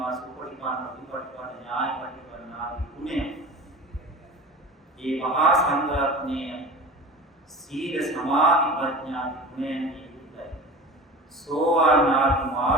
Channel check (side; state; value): both; normal; correlation 0.35